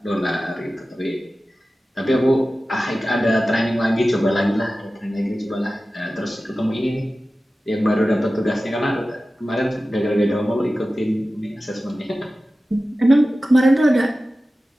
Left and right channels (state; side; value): normal; both; correlation 0.95